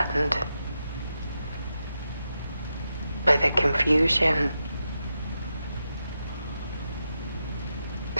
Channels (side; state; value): both; inverted; correlation -0.88